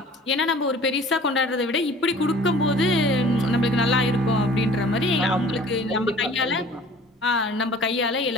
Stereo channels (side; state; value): both; normal; correlation 0.48